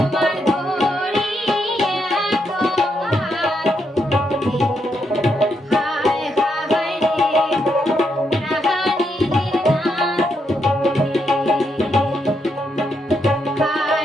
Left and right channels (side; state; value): both; normal; correlation 0.80